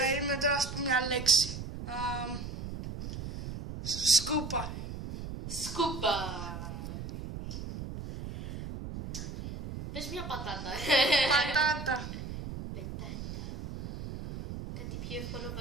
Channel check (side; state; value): right; noise; rumble, 8 dB below the sound